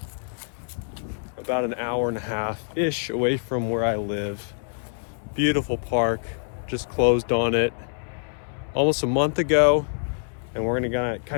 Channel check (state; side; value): silent; right; 59 dB below the other